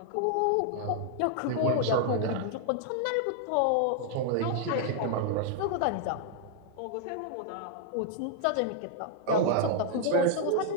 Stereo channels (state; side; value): different; both; correlation 0.00